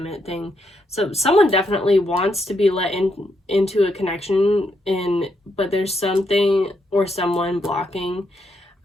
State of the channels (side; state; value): both; normal; correlation 0.79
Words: it thing. So someone definitely wants to be let into a connection, but there's something or someone blocking.